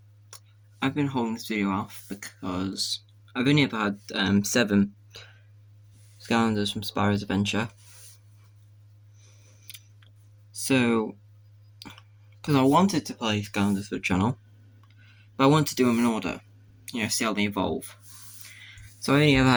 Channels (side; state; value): both; identical; correlation 1.00